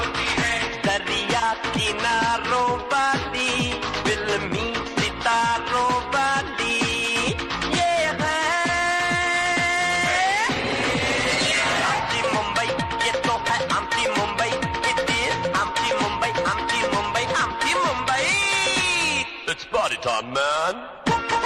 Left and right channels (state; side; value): identical; both; correlation 1.00